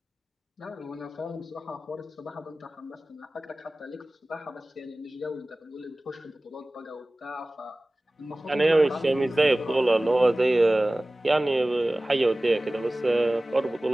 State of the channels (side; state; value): both; normal; correlation 0.98